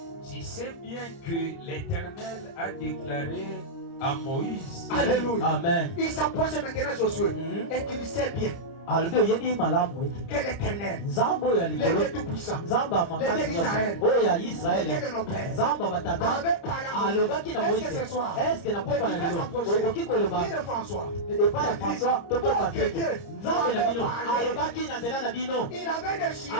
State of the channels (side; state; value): right; late; 30 ms